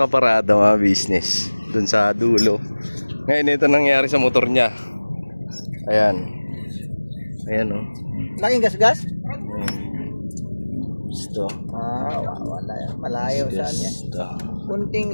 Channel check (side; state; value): both; inverted; correlation -1.00